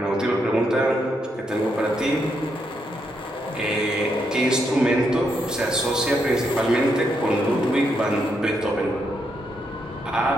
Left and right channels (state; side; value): normal; both; correlation 0.79